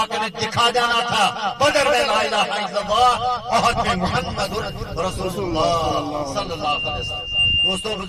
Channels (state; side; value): identical; both; correlation 1.00